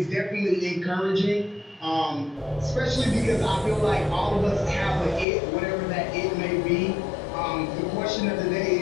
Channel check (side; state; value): right; drops out; at 5.2 s